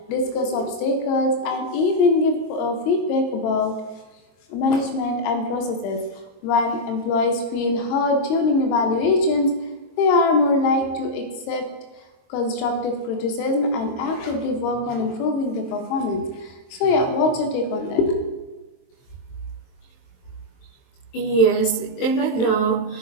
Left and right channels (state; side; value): late; right; 22 ms